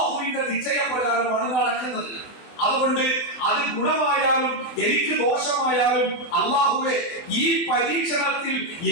നിശ്ചയപ്രകാരമാണ് നടക്കുന്നത്. അതുകൊണ്ട് അത് ഗുണമായാലും എനിക്ക് ദോഷമായാലും അള്ളാഹുവേ ഈ പരീക്ഷണത്തിൽ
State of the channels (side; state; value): right; late; 24 ms